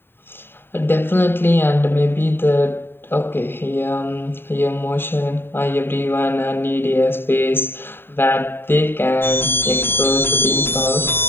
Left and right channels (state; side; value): late; right; 0.11 ms